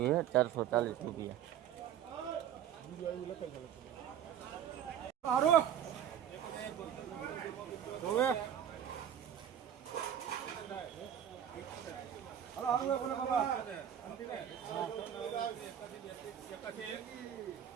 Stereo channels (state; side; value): quieter; left; 9.7 dB